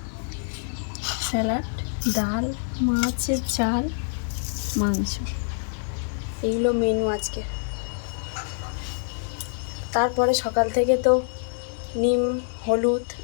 স্যালাড, ডাল, মাছের ঝাল, মাংস। এইগুলো মেনু আজকে। তারপরে সকাল থেকে তো নিম, হলুদ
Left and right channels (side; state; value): right; silent; digital silence